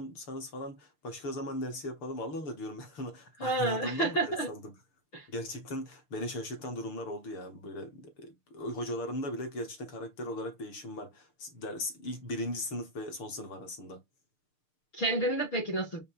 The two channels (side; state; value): right; late; 6.6 ms